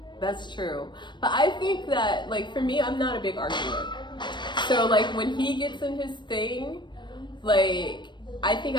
That's true. But I think that, like, for me, I'm not a big arguer. So, like, when he gets in his thing, like, I think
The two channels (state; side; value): late; right; 0.22 ms